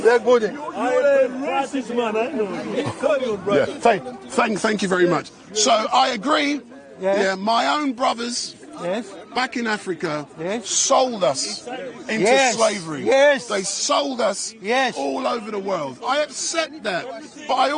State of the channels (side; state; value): both; identical; correlation 1.00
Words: You're a racist man, I know. You call your brother. Yeah, thank you very much. So I agree. Yes. Yeah, my own brothers Yes. back in Africa Yes. sold us into Yes. slavery. Yes. They sold us Yes. all over the world. I accept that, but I